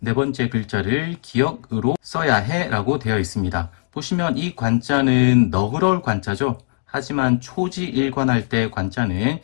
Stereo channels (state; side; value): silent; right; digital silence